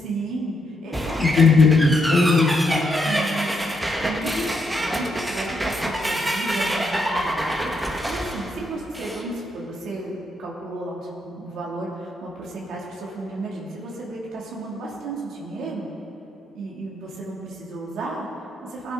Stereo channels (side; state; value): both; normal; correlation 0.78